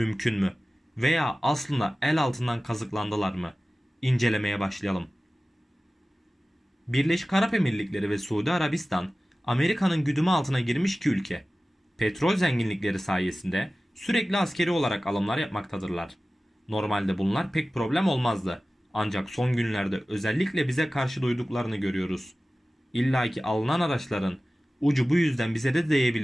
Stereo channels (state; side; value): normal; both; correlation 0.96